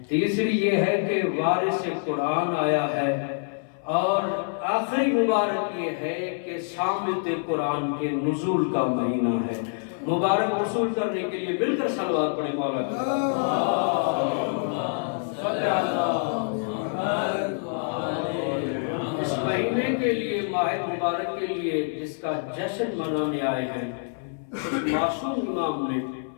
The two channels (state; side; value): silent; right; 57 dB below the other